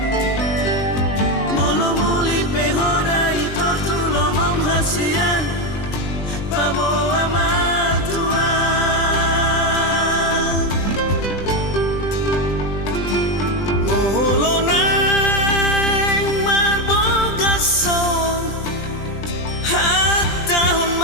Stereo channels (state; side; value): late; right; 20 ms